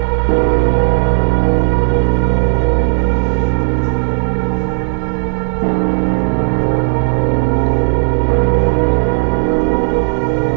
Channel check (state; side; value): silent; left; digital silence